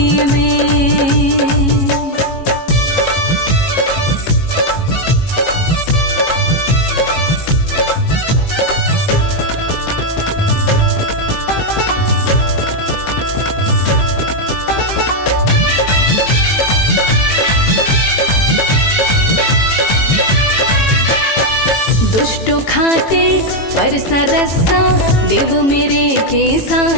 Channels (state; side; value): late; right; 18 ms